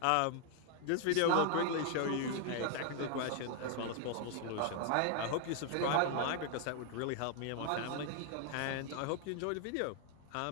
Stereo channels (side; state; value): both; different; correlation 0.00